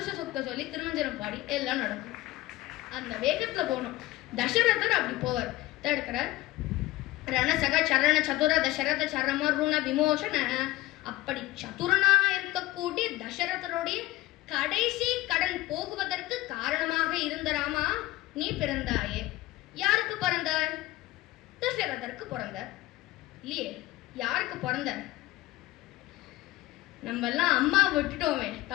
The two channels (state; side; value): quieter; right; 17.9 dB